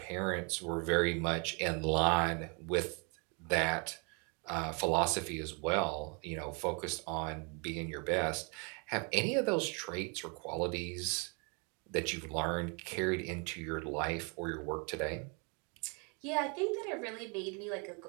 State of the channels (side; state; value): left; quieter; 34.6 dB